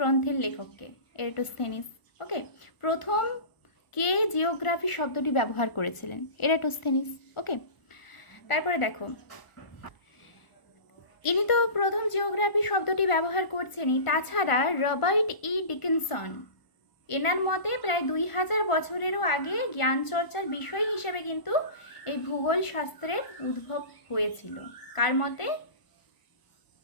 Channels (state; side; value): late; right; 1.4 ms